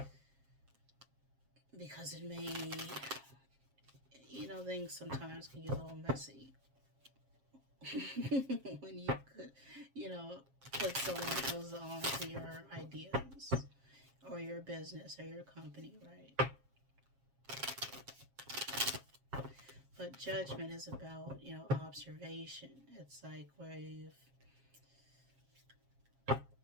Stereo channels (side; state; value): left; late; 7.4 ms